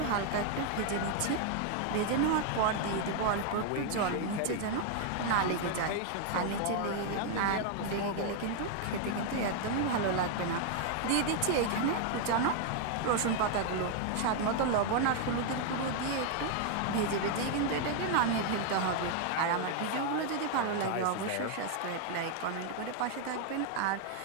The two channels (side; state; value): both; different; correlation 0.00